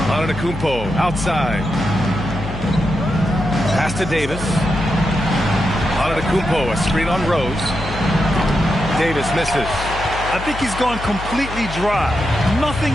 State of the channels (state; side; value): noise; left; hum, 9 dB below the sound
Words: Antetokounmpo outside. Pass to Davis. Antetokounmpo, a screen on Rose. Davis misses. I think he's gone completely dry. Nothing